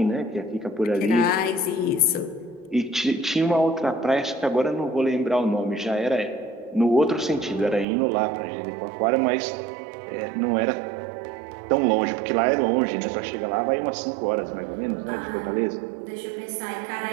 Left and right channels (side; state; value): left; drops out; at 7.9 s